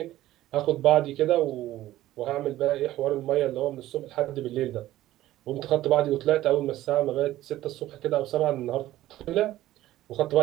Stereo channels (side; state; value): left; quieter; 14.9 dB